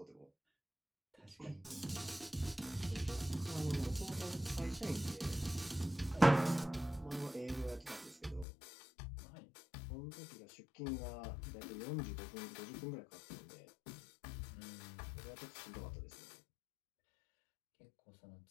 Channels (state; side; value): drops out; right; at 8.5 s